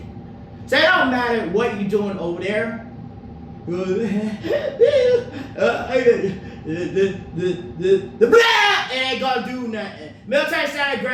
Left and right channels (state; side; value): identical; both; correlation 1.00